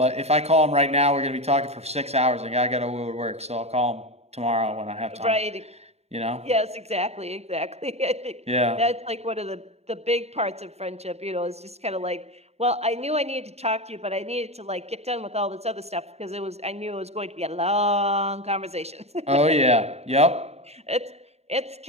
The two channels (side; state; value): left; late; 0.31 ms